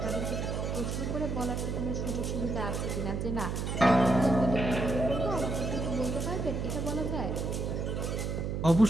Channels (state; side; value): noise; right; hum, 2 dB below the sound